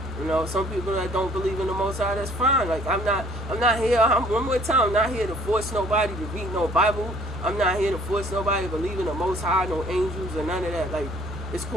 You know, some people that don't believe in the Most High, that's fine. Like, I'm not here, one more time, I'm not here to force nobody to read no Bible. I'm not here to force nobody to believe in the Most High, no angels or none of that. Like, it's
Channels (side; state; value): both; normal; correlation 0.56